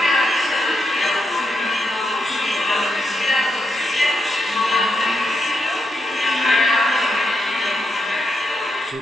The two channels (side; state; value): both; normal; correlation 0.82